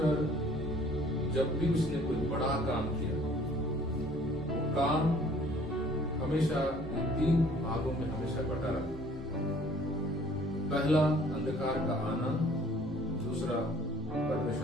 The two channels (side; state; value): both; normal; correlation 0.55